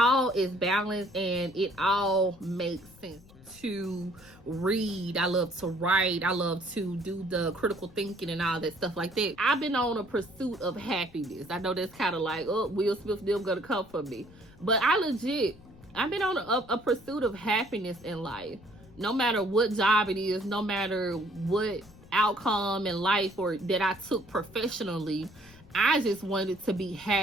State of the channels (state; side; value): noise; left; rumble, 23 dB below the sound